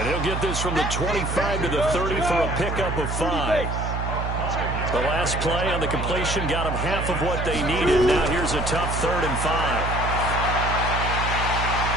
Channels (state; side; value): noise; right; hum, 3 dB below the sound